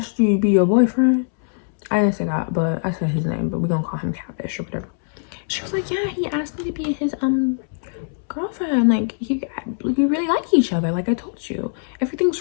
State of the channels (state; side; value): silent; right; 64 dB below the other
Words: you to be your boyfriend? I didn't say that, but I said his name, but we're gonna call him Catfish or whatever. She was like, yeah, he asked me to be his girlfriend. Like, we really like each other, like I told you.